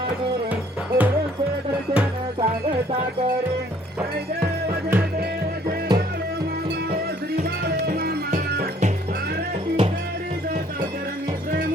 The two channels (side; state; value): both; normal; correlation 0.60